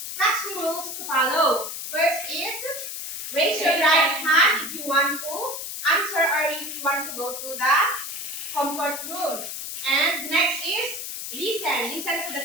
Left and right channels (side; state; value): left; noise; hiss, 6 dB below the sound